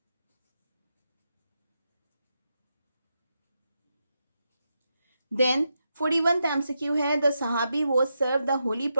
Then 41th MCQ है द सहाबी वो सर्व द होली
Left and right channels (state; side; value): inverted; both; correlation -0.85